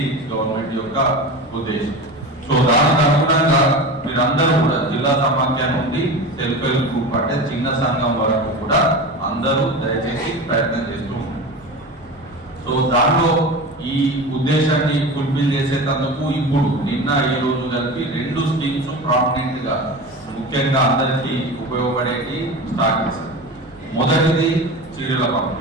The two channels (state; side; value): normal; both; correlation 0.29